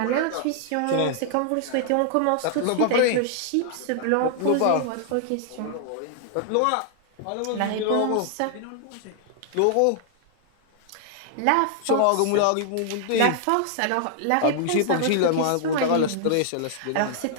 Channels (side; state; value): both; different; correlation -0.01